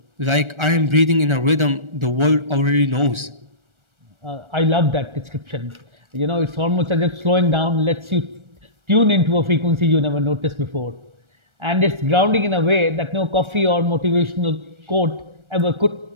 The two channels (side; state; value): left; late; 1.4 ms